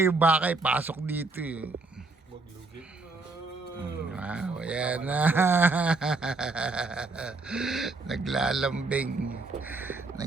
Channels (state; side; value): quieter; left; 3.6 dB